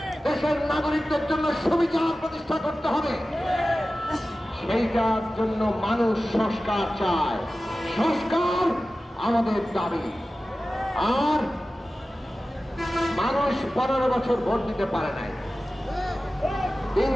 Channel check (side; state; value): both; normal; correlation 0.95